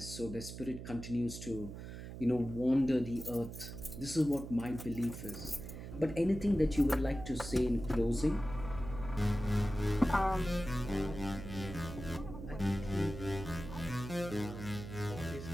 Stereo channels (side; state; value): right; noise; hum, 10 dB below the sound